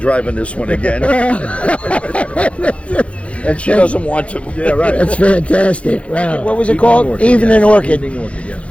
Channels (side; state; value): right; late; 0.062 ms